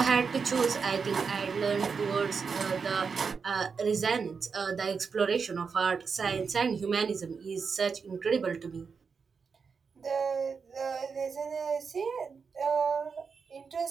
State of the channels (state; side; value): quieter; left; 5.5 dB